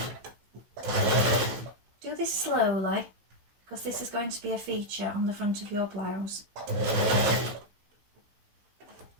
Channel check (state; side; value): late; left; 16 ms